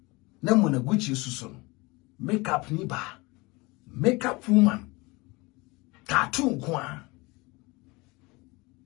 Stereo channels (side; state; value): right; quieter; 24.5 dB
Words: na Munaguchi susu no makeup ni ba makeup woman tattoo kwa